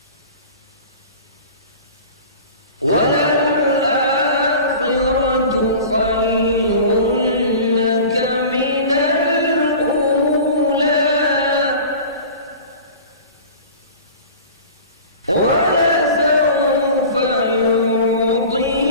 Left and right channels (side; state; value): both; inverted; correlation -0.39